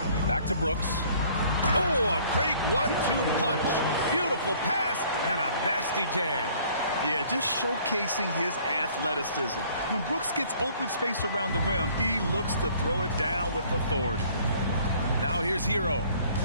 Back to Brooks. Oh, a great 1-2 punch. Beautiful pass and a nasty jam. Yeah, just showcasing his athleticism. When Brooks gets open space around the rim, he looks to throw it down with authority. Now here's Hero.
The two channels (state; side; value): inverted; both; correlation -0.56